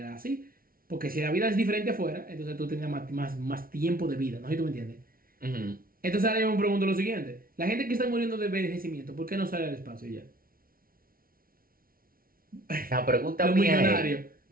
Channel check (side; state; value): left; late; 0.43 ms